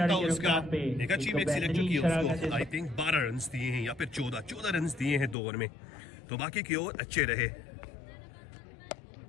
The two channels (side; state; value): right; drops out; at 5.4 s